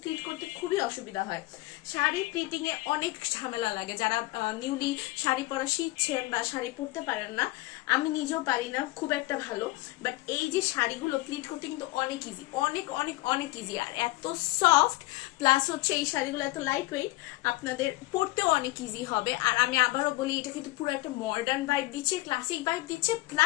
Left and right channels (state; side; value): quieter; right; 20.2 dB